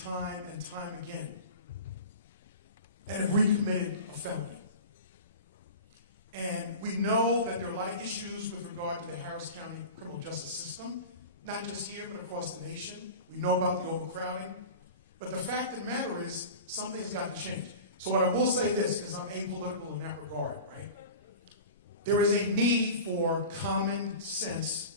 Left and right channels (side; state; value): both; inverted; correlation -0.34